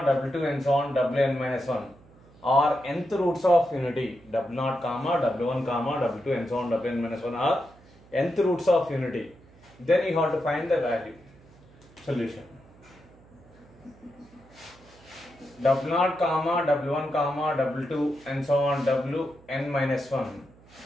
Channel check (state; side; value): noise; right; hum, 26 dB below the sound